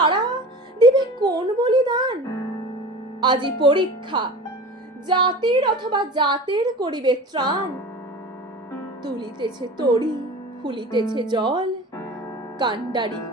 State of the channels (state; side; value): normal; both; correlation 0.36